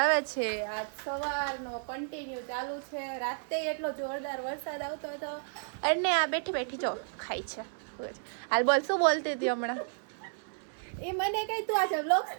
છે. આજ સવારનો કન્ટિન્યુ ચાલુ છે. રાતે એટલો જોરદાર વરસાદ આવતો હતો. અને આ બેઠી બેઠી જો ખાય છે. હાલ બોલ, શું બોલતી હતી હમણાં? એ મને કઈ તું આજે વ્લોગ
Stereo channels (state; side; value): silent; left; digital silence